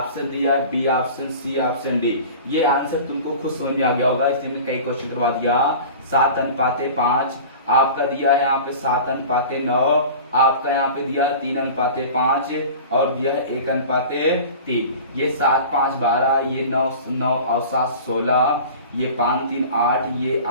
दिया है, B option, C option, D. ये आंसर तुमको खुद समझ में आ गया होगा, इसलिए मैंने कई क्वेश्चन करवा दिया। 7:5 आपका दिया है यहाँ पे 7:9, आपका यहाँ पे दिया है 3:5 और दिया है 1:3। ये 7 5 12, ये 9 9 और 7 16, ये 5 3 8, ये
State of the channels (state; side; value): inverted; both; correlation -0.38